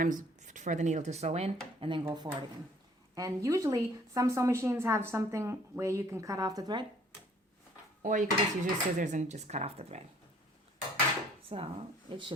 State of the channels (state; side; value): normal; both; correlation 0.58